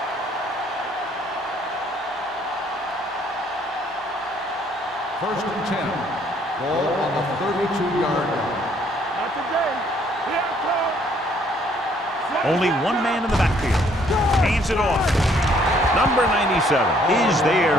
First and 10. Ball on the 32-yard line. Not today. Here it comes. Only one man in the backfield. Hands it off. Number 97 is there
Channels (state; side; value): normal; both; correlation 0.64